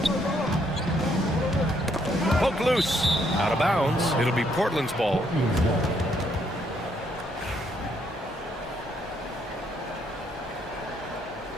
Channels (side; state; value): both; normal; correlation 0.71